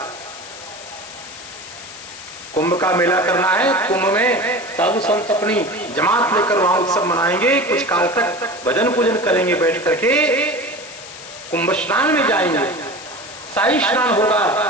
कुंभ का मेला करना है, कुंभ में साधु संत अपनी जमात लेकर वहां उत्सव मनाएंगे, कुछ काल तक भजन पूजन करेंगे, बैठ करके कुंभ स्नान में जाएंगे, शाही स्नान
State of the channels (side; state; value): left; noise; hiss, 15 dB below the sound